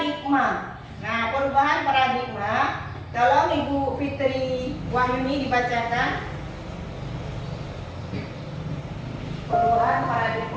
Nah, perubahan paradigma, tolong Ibu Fitri Wahyuni dibacakan. Perubahan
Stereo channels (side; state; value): both; identical; correlation 1.00